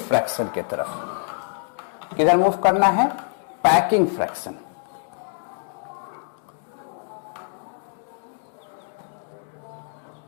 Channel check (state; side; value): silent; right; 59 dB below the other